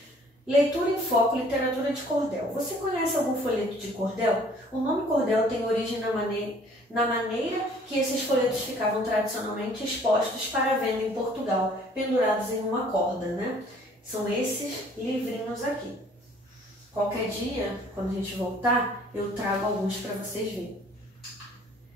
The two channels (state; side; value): normal; both; correlation 0.56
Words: Leitura em foco, literatura de cordel. Você conhece algum folheto de cordel? O nome cordel tem origem na maneira que esses folhetos ficavam tradicionalmente expostos para venda em Portugal, pendurados em uma corda, né? São esses livrinhos aqui. Qualquer dia, quando a gente voltar, eu trago alguns para vocês verem.